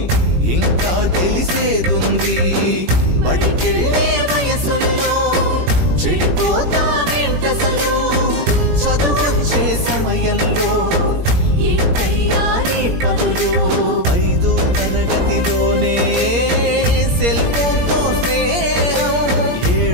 ఇంకా తెలిసేదుంది బడికెళ్ళే వయసుల్లో చెడిపోతావేంటసలు చదువొచ్చే సమయంలో ఏంటయ్యా నీ పనులు 5వ తరగతిలోనే సెల్ ఫోన్తో స్నేహం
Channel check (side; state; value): left; late; 17 ms